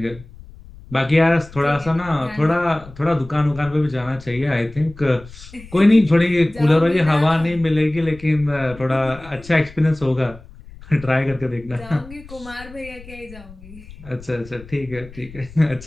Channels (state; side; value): noise; left; rumble, 19 dB below the sound